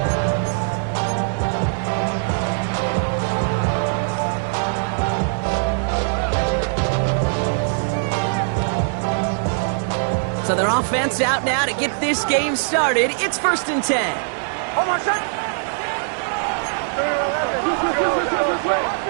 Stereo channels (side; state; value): left; silent; 65 dB below the other